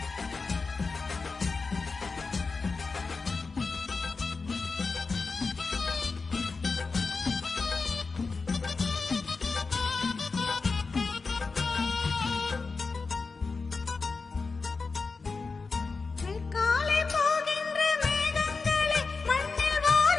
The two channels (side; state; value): right; quieter; 4.3 dB